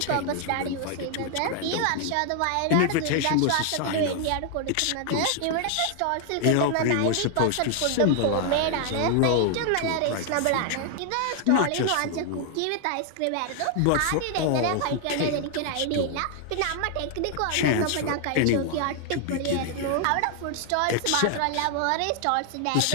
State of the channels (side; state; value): both; different; correlation 0.00